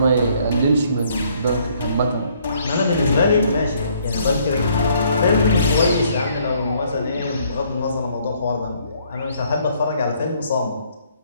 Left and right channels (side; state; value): both; inverted; correlation -0.65